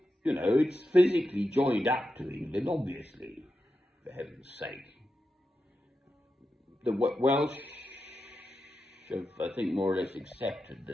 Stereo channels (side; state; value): both; normal; correlation 0.89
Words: you know, it's physically joined up to England, obviously, for heaven's sake. The Welsh have, I think, more or less accepted